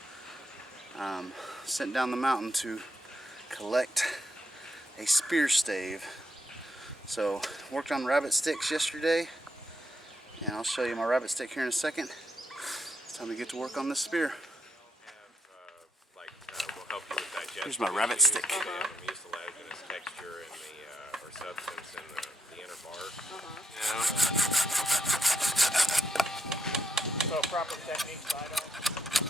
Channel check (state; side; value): normal; both; correlation 0.79